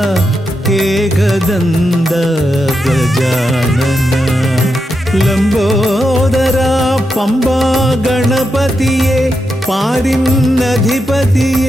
ഏകദന്ത ഗജാനന. ലംബോദര പമ്പ ഗണപതിയെ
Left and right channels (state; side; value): normal; both; correlation 0.86